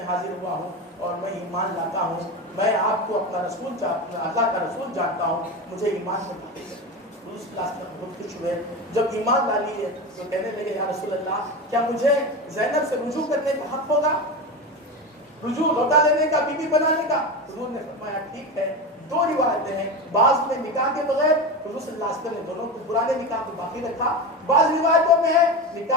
حاضر ہوا ہوں اور میں ایمان لاتا ہوں، میں آپ کو اپنا رسول اللہ کا رسول جانتا ہوں، مجھے ایمان میں داخل کریں۔ حضور صلی اللہ علیہ وسلم بہت خوش ہوئے، جب ایمان لا لیے تو کہنے لگے یا رسول اللہ کیا مجھے زینب سے رجوع کرنے کا حق ہوگا، رجوع لوٹا لینے کا، بیوی بنانے کا؟ حضور نے فرمایا ٹھیک ہے۔ 2 روایتیں ہیں، بعض میں نکاح کے بغیر، حضور صلی اللہ علیہ وسلم نے دونوں کو پرانے نکاح کو باقی رکھا، بعض روایتوں میں ہے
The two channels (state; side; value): normal; both; correlation 0.21